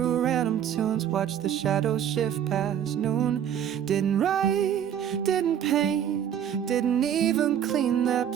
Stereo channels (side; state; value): left; quieter; 9.4 dB